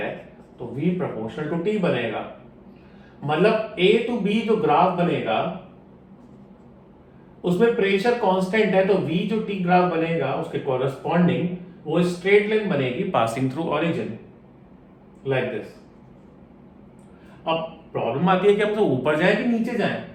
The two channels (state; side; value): identical; both; correlation 1.00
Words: तो V प्रोपोर्शनल टू T बनेगा। मतलब A to B जो ग्राफ बनेगा उसमें प्रेशर कांस्टेंट है, तो V जो T ग्राफ बनेगा उसके कॉरेस्पॉन्डिंग वो स्ट्रेट लाइन बनेगी passing through origin like this. अब प्रॉब्लम आती है कि हम तो ऊपर जाए कि नीचे जाए।